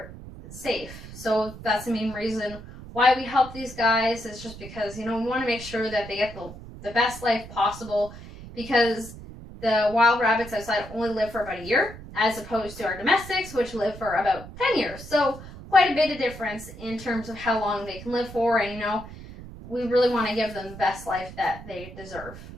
safe. So that's the main reason why we help these guys, is just because, you know, we want to make sure that they get the best life possible, because the wild rabbits outside only live for about a year, as opposed to our domestics, which live for about 10 years. So quite a bit of difference in terms of how long they can live for, and, you know, we really want to give them the best life that they deserve.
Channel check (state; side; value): noise; right; rumble, 14 dB below the sound